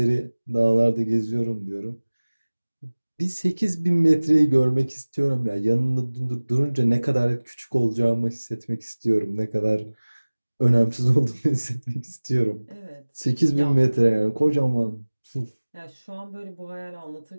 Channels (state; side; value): inverted; both; correlation -1.00